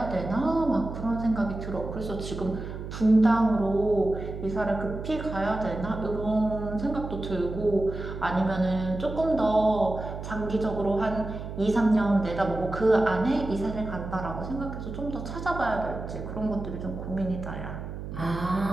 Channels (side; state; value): right; noise; hum, 8 dB below the sound